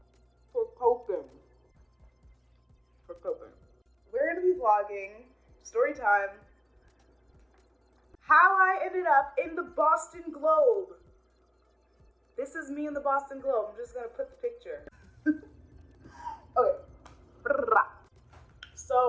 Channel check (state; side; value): identical; both; correlation 1.00